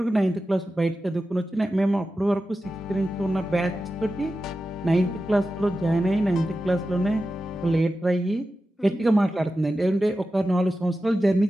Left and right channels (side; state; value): both; normal; correlation 0.92